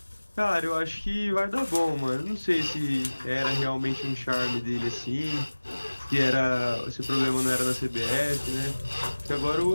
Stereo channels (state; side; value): inverted; both; correlation -1.00